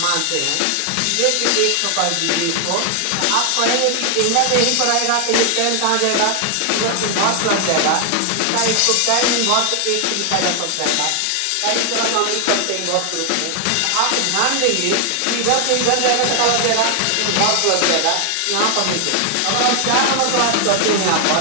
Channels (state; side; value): different; both; correlation 0.00